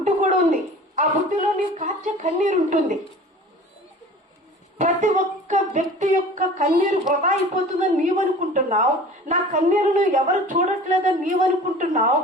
కూడా ఉంది. ఆ బుట్టులో నీ కార్చే కన్నీరు ఉంటుంది. ప్రతి ఒక్క వ్యక్తి యొక్క కన్నీరు వృధా అయిపోతుందని నీవనుకుంటున్నావు, నా కన్నీరును ఎవరు చూడట్లేదని నీవనుకుంటున్నావు.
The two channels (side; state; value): both; normal; correlation 0.42